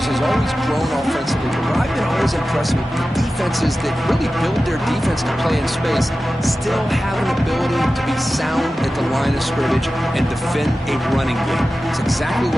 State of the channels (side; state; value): both; normal; correlation 0.94